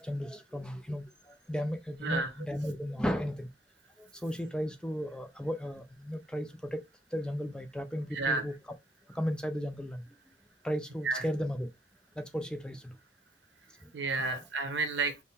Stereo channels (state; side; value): normal; both; correlation 0.71